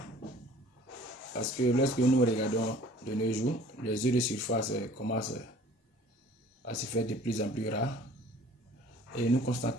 Parce que lorsque nous regardons de nos jours, les eaux de surface commencent à se faire de plus en plus rares. Et nous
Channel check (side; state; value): both; normal; correlation 0.51